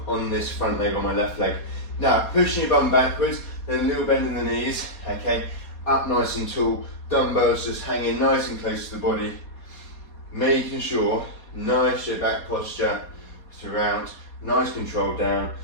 on this front leg on my left leg. Now, pushing your bum backwards, then a little bend in the knees, okay? Up nice and tall, dumbbells just hanging nice and close to the body, making sure nice straight back posture throughout, nice control down,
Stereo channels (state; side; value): late; right; 4.2 ms